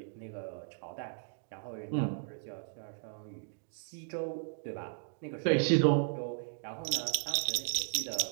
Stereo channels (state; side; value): silent; left; digital silence